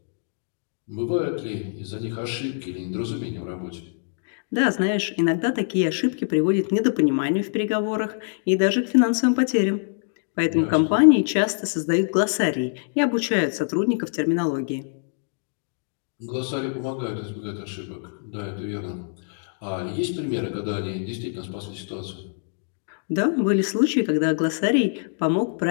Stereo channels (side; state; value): right; silent; digital silence